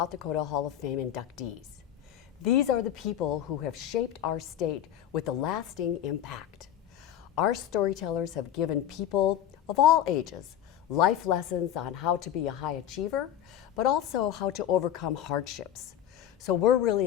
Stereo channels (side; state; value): right; quieter; 10.7 dB